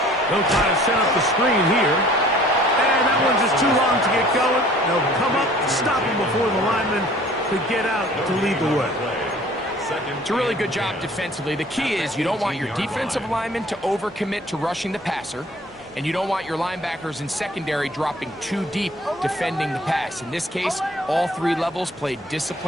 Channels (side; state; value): both; normal; correlation 0.52